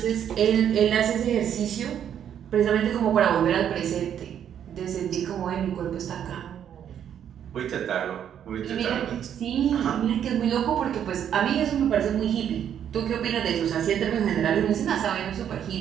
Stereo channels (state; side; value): quieter; left; 9.3 dB